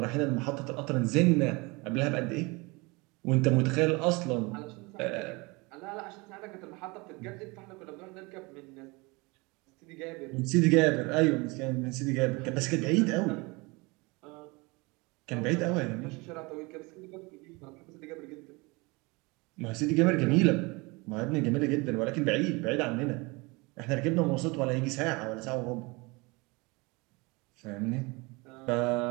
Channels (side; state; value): left; quieter; 26.0 dB